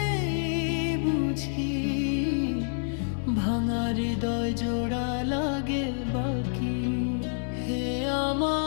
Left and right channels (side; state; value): right; silent; 59 dB below the other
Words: বুঝি ভাঙা হৃদয় জোড়া লাগে বাকি। হে